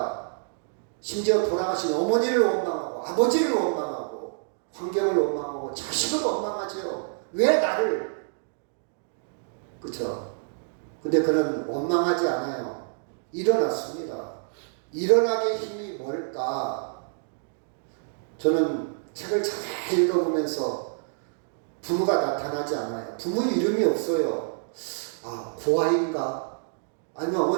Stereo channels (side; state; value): left; silent; digital silence